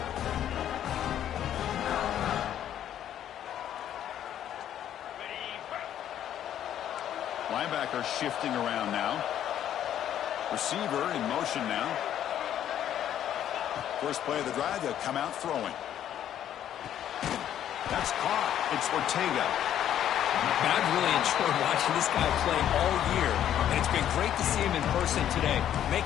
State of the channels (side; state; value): right; quieter; 10.7 dB